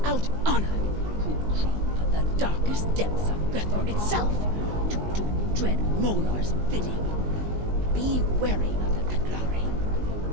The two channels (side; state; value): left; late; 19 ms